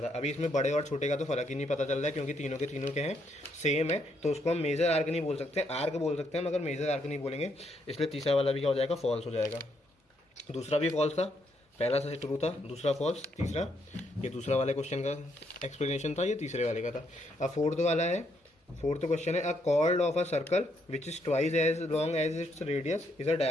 था। अभी इसमें बड़े और छोटे का तो फर्क ही नहीं पता चल रहा है, क्योंकि तीनों के तीनों के हैं सेम है, तो उसको हम मेजर आर्क नहीं बोल सकते, आर्क बोल सकते हैं, मगर मेजर आर्क नहीं बोलेंगे। इसलिए तीसरा वाला भी क्या हो जाएगा, फॉल्स हो जाएगा। दूसरा भी फॉल्स था, पहला से ट्रू था, दूसरा फॉल्स, तीसरा, ये दूसरा वाले क्वेश्चन का एक्सप्लेनेशन था, ये तीसरे वाले का था। अब फोर्थ वाला है, फोर्थ क्वेश्चन है, a chord of a circle which is twice as long as its radius is a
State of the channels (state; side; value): normal; both; correlation 0.75